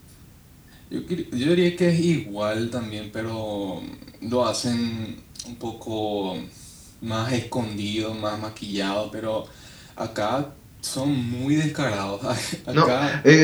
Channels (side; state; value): both; identical; correlation 1.00